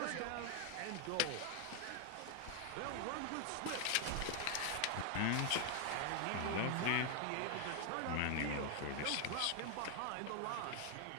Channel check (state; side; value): different; both; correlation 0.00